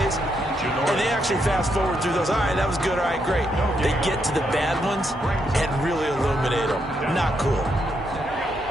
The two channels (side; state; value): both; normal; correlation 0.78